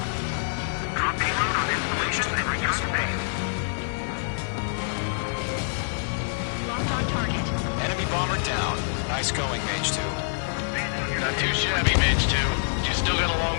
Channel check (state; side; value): silent; right; digital silence